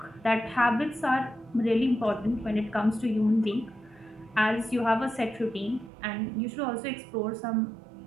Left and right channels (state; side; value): drops out; left; at 5.9 s